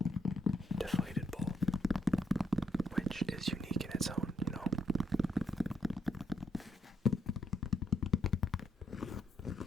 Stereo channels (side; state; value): both; normal; correlation 0.76